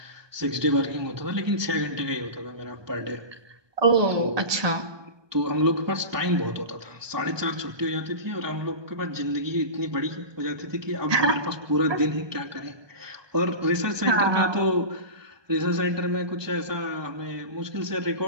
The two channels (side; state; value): left; late; 1.2 ms